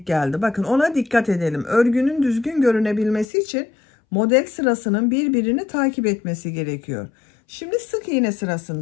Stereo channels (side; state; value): right; drops out; at 3.2 s